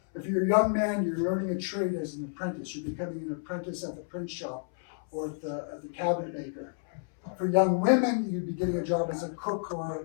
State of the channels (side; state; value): right; silent; 58 dB below the other